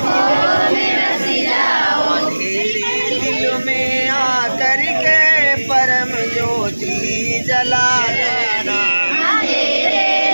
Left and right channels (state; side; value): inverted; both; correlation -1.00